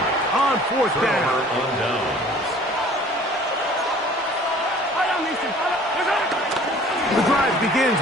on 4th down. The drive begins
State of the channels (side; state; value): both; normal; correlation 0.50